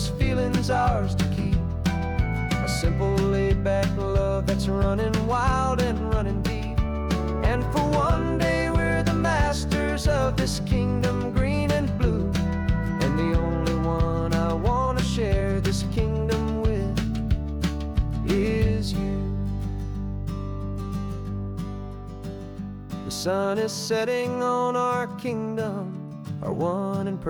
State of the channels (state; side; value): identical; both; correlation 1.00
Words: feeling's ours to keep. A simple laid-back love that's running wild and running deep. And for one day we're the masters of this kingdom green and blue, and the only one I wanna share this kingdom with is you. The sun is setting on our kingdom, our one and